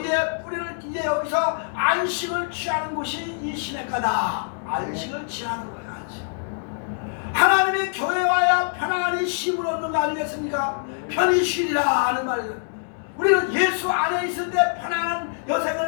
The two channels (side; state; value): right; silent; digital silence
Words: 뿌리를 이제 여기서 안식을 취하는 곳이 이 시냇가다. 안식을 취하는 거예요. 안식. 하나님의 교회에 와야 편안히 쉼을 얻는 거 아니겠습니까? 편히 쉬리라 하는 말이죠. 우리는 예수 안에 있을 때 편안한